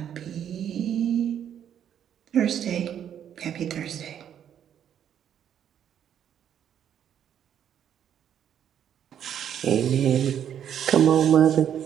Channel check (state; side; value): quieter; left; 9.4 dB